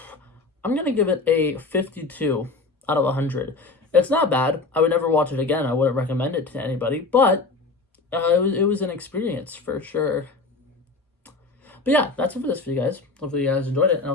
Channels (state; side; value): quieter; right; 3.7 dB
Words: gonna give it a 52 out of 100. It's not bad. I would never watch it again. I wouldn't recommend it to anybody, but it was an experience for sure. But yeah, that's it for this video, guys. Hopefully you guys enjoyed it, and